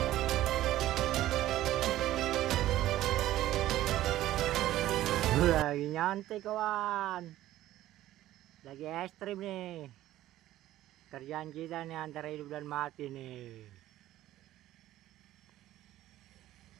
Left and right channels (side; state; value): left; quieter; 14.3 dB